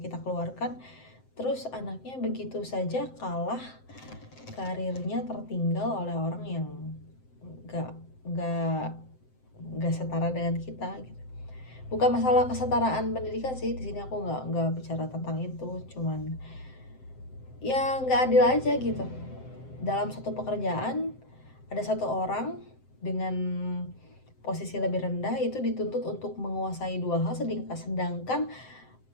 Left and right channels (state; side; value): late; right; 7.7 ms